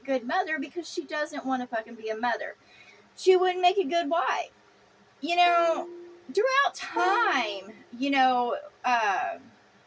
mother because she doesn't want to fucking be a mother. She wouldn't make a good wife. Throughout time,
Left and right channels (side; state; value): both; identical; correlation 1.00